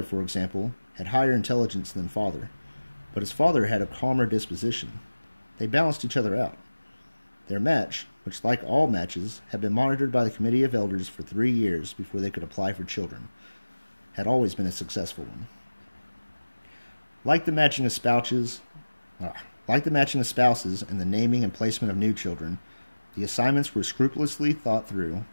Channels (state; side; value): inverted; both; correlation -1.00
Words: for example, had higher intelligence than father, but his father had a calmer disposition. They balanced each other out. Their match, which like all matches had been monitored by the Committee of Elders for 3 years before they could apply for children, had always been a successful one. Like the matching of spouses and the naming and placement of new children, the assignments were scrupulously thought through